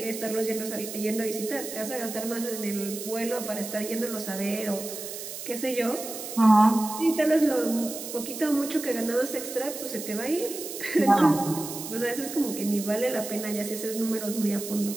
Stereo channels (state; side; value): noise; right; hiss, 9 dB below the sound